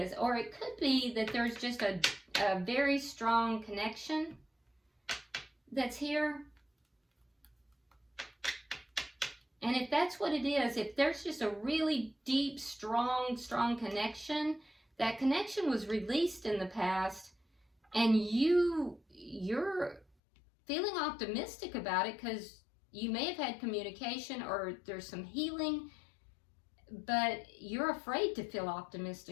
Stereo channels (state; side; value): drops out; right; at 20.1 s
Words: Or it could be that there's just a very strong connection that's here. And if that's what it is, if there's just a really deep, strong connection, that connection was released in the past, and you're feeling optimistic about it because you may have had communication or there's some healing, but you're afraid to feel